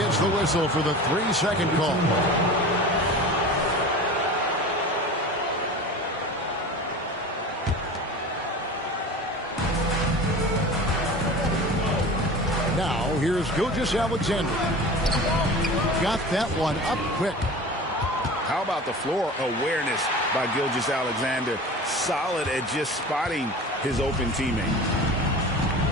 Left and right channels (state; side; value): normal; both; correlation 0.36